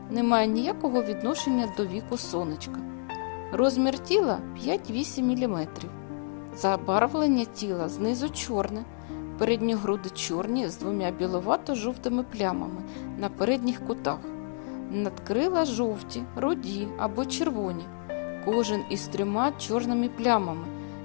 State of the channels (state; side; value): silent; right; digital silence